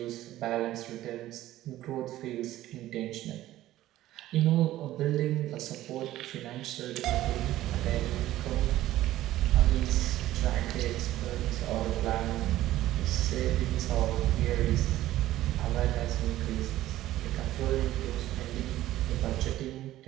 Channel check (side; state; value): left; quieter; 14.7 dB